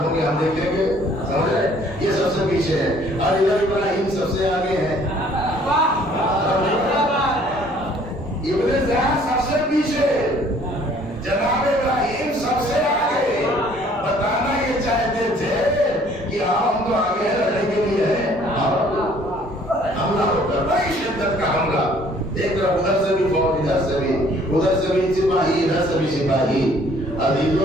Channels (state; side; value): normal; both; correlation 0.58